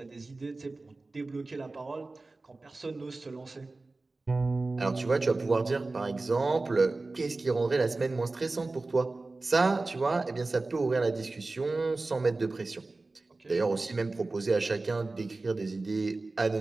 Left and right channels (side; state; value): left; quieter; 3.3 dB